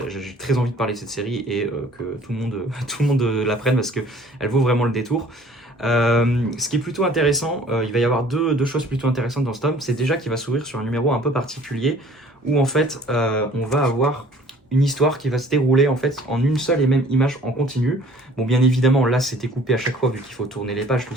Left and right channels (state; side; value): normal; both; correlation 0.52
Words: très envie de parler de cette série et que tout le monde la prenne parce que elle vaut vraiment le détour. Ce qui est plutôt intéressant, il va y avoir deux choses plutôt intéressantes dans ce tome. C'est déjà qu'il va s'ouvrir sur un numéro un peu particulier où en fait on va avoir une histoire qui va se dérouler en fait en une seule et même image en continu. Bon, bien évidemment là c'était coupé à chaque fois vu qu'il faut tourner les pages, tout